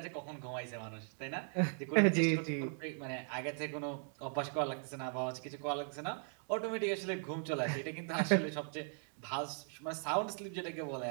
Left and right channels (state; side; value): silent; left; 52 dB below the other